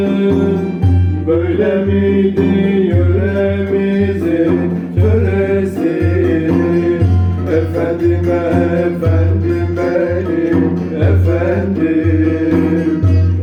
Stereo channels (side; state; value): both; identical; correlation 1.00